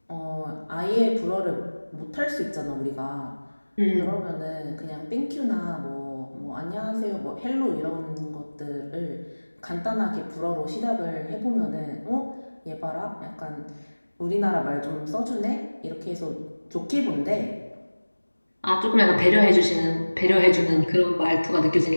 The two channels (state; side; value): inverted; both; correlation -1.00